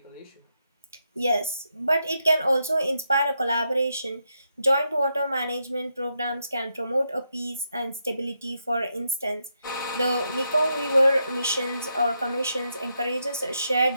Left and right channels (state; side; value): inverted; both; correlation -0.82